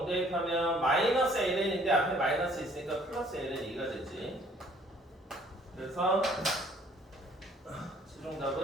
대입하면 마이너스 ln인데 앞에 마이너스 있으니까 플러스 ln2가 되지. 그래서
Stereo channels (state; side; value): normal; both; correlation 0.59